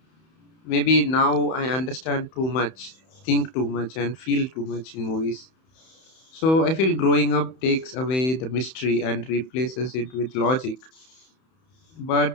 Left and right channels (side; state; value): right; late; 31 ms